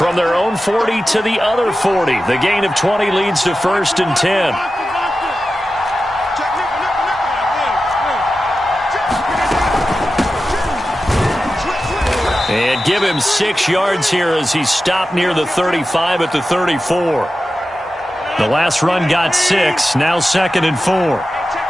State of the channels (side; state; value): both; normal; correlation 0.93